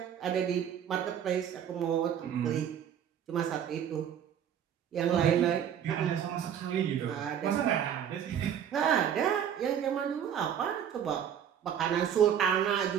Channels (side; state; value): left; quieter; 9.0 dB